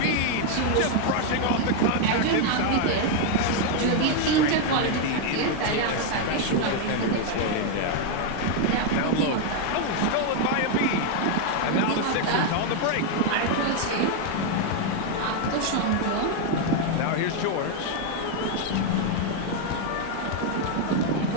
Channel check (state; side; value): different; both; correlation 0.01